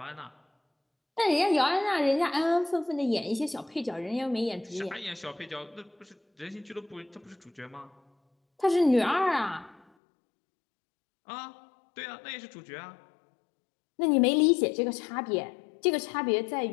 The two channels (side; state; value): right; drops out; at 9.8 s